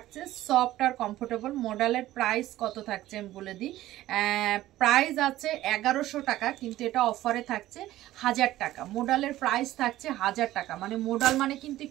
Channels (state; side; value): quieter; left; 15.1 dB